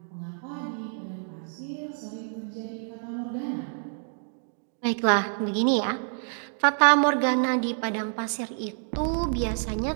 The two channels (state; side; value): silent; left; digital silence